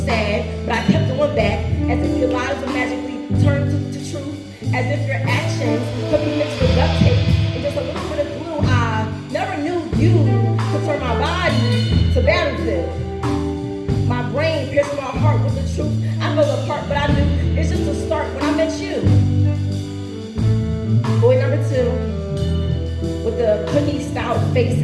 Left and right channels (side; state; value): both; identical; correlation 1.00